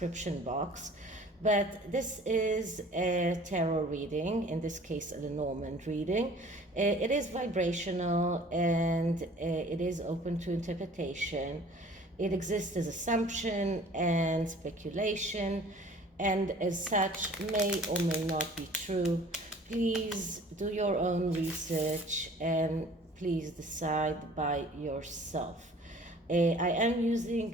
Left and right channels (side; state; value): both; normal; correlation 0.50